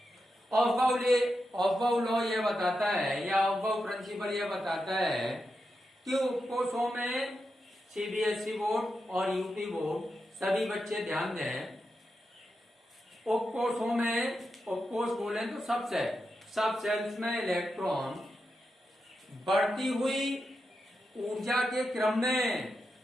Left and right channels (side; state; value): both; normal; correlation 0.87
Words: ऑफबाउ लॉ ये बताता है या ऑफबाउ प्रिंसिपल ये बताता है कि उपकोषों में सीबीएसई बोर्ड और यूपी बोर्ड सभी बच्चे ध्यान दें, उपकोषों में, उपकोष बोले तो सब सेल्स में इलेक्ट्रॉन बढ़ती हुई ऊर्जा के क्रम में,